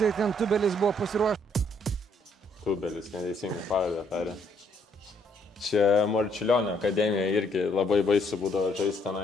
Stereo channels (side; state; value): both; normal; correlation 0.69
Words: ir ten Tubelis buvo pasiruošęs. Tubelis, neteisingai pavardę tarė. Čia Marčiulionio akademija irgi labai baisu būdavo žaisti